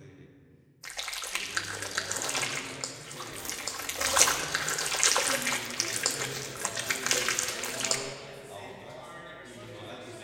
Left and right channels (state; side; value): identical; both; correlation 1.00